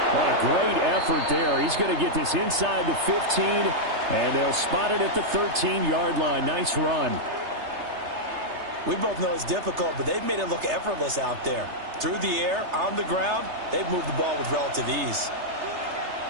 What a great effort there. He's going to get this inside the 15, and they'll spot it at the 13-yard line. Nice run. We both know it's difficult, but they've made it look effortless out there. Through the air, on the ground, they've moved the ball with relative ease.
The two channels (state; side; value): late; left; 3.3 ms